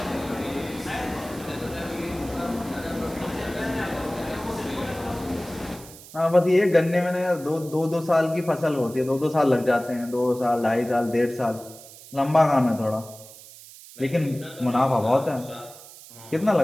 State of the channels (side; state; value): right; noise; hiss, 18 dB below the sound